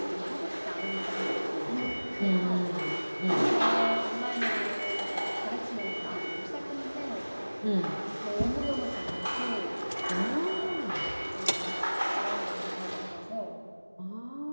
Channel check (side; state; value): both; inverted; correlation -1.00